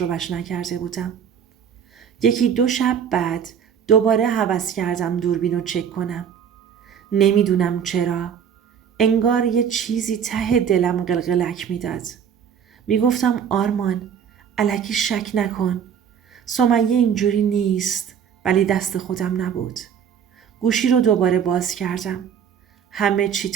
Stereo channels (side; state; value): left; quieter; 8.0 dB